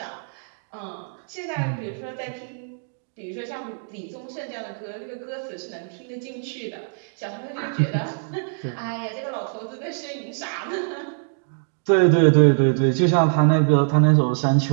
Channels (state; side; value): silent; left; digital silence